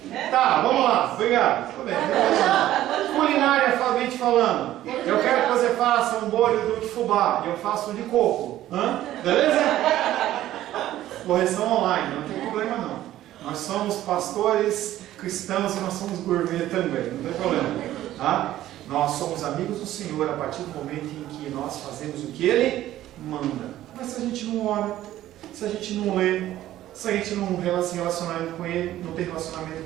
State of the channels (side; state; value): left; quieter; 13.7 dB